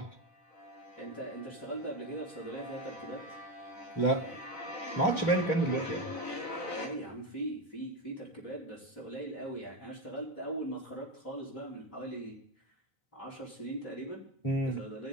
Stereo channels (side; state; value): right; late; 4.0 ms